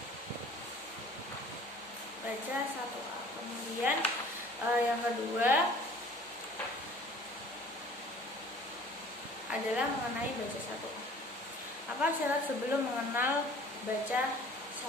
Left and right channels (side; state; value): both; normal; correlation 0.50